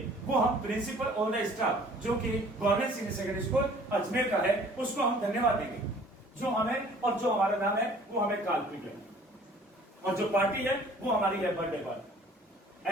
वो हम प्रिंसिपल ऑल द स्टाफ, जो कि government senior secondary school Ajmer का है, उसको हम धन्यवाद देंगे। जो हमें और जो हमारा नाम है वो हमें काल्पनिक है, और जो पार्टी है वो हमारी है बर्थडे पार्टी,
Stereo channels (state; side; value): normal; both; correlation 0.53